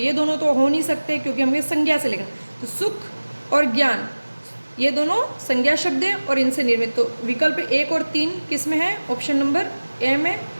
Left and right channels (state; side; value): inverted; both; correlation -1.00